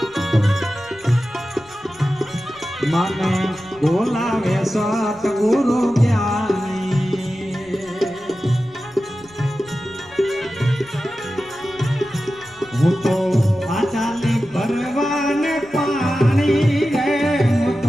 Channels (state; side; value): noise; left; rumble, 26 dB below the sound